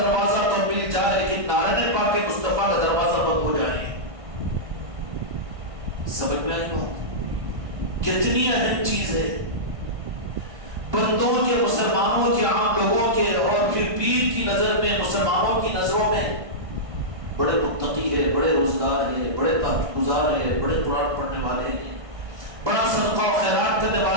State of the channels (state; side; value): late; left; 1.6 ms